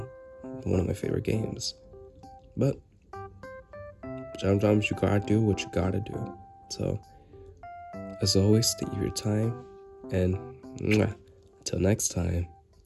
one of my favorite games. But sometimes you gotta do what you gotta do. So, as always, thank you for your time, and until next time,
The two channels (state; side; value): identical; both; correlation 1.00